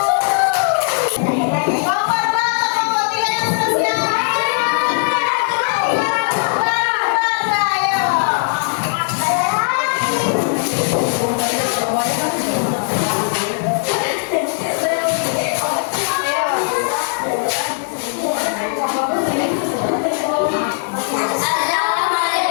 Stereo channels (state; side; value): silent; right; digital silence